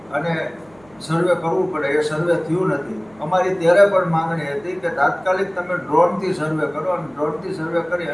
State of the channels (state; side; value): noise; right; hum, 29 dB below the sound